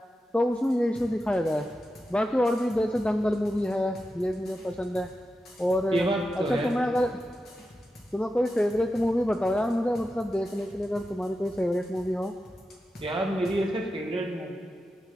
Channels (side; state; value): both; normal; correlation 0.90